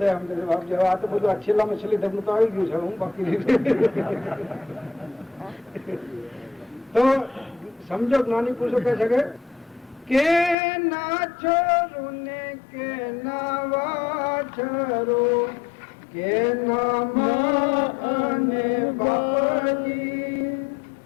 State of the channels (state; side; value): drops out; right; at 10.6 s